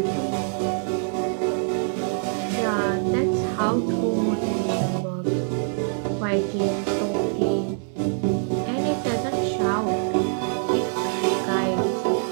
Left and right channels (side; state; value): left; silent; digital silence